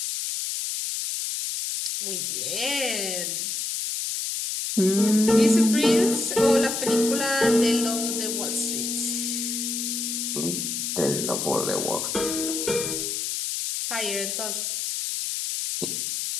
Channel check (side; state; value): left; noise; hiss, 2 dB below the sound